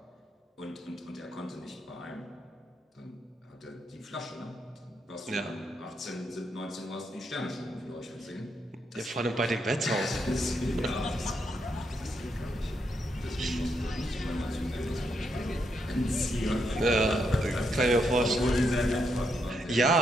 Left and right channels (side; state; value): both; normal; correlation 0.79